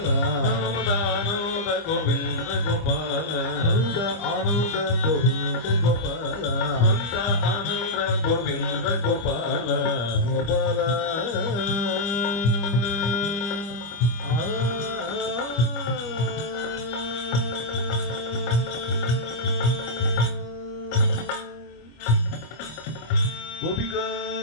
నందానంద గోవింద గోపాల నంద ఆనంద గోవింద గోపాల నంద ఆనంద గోవింద గోపాల గోపాల గోపికా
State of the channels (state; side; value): late; right; 25 ms